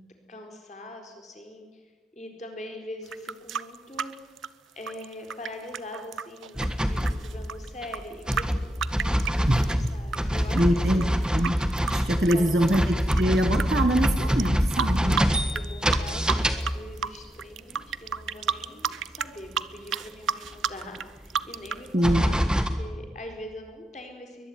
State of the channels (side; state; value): both; normal; correlation 0.84